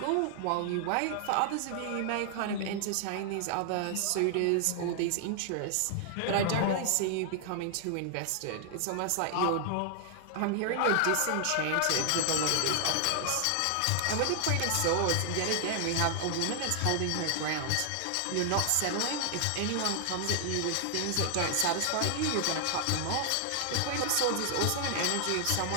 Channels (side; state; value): both; different; correlation 0.00